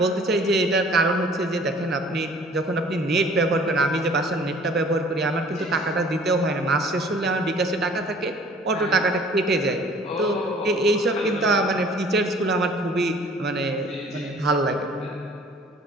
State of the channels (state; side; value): normal; both; correlation 0.52